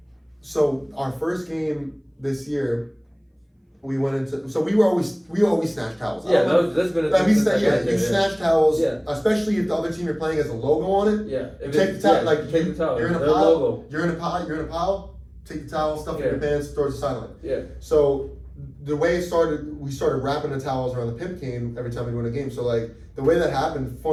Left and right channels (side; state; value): both; identical; correlation 1.00